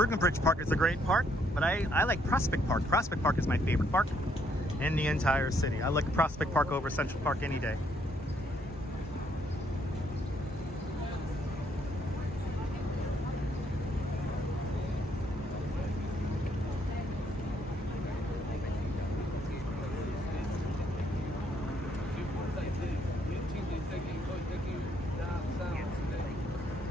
Bridge Park is a great park, but I like Prospect Park. Prospect Park is my favorite park in the entire city. I like Prospect Park over Central Park any day.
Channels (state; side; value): normal; both; correlation 0.70